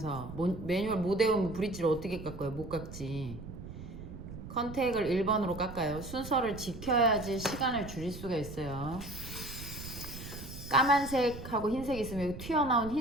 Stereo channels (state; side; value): noise; right; rumble, 11 dB below the sound